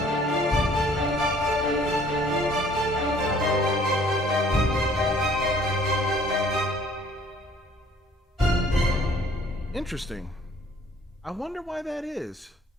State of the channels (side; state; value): both; normal; correlation 0.57